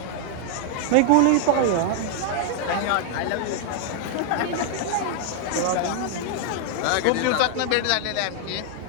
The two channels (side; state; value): both; different; correlation 0.00